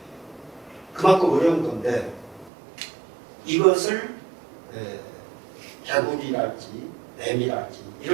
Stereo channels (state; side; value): drops out; left; at 2.5 s